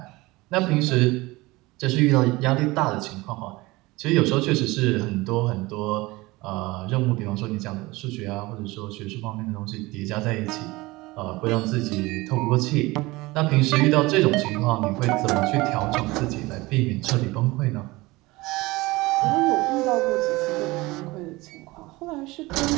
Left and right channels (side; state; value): left; quieter; 21.4 dB